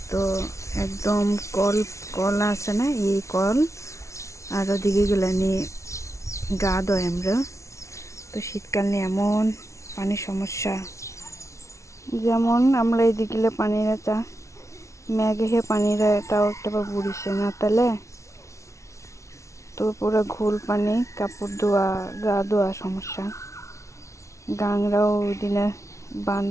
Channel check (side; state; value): right; late; 0.14 ms